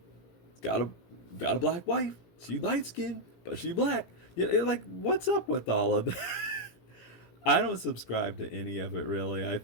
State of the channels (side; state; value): right; late; 17 ms